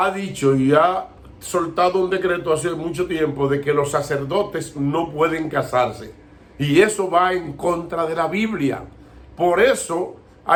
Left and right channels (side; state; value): both; identical; correlation 1.00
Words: dicho y ha soltado un decreto hace mucho tiempo de que los sacerdotes no pueden casarse. Y eso va en contra de la Biblia. Por eso